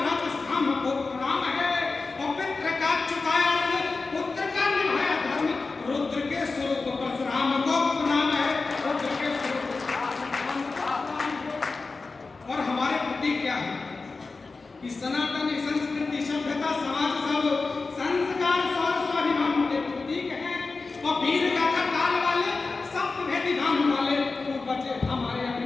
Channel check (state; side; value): quieter; right; 3.9 dB